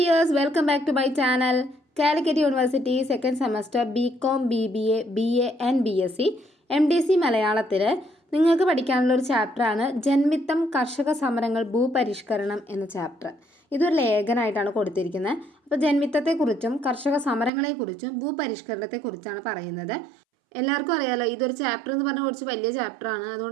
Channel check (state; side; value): drops out; left; at 17.5 s